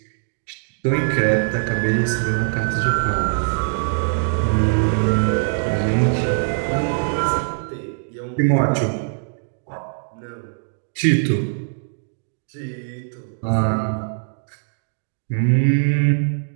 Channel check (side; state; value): left; silent; digital silence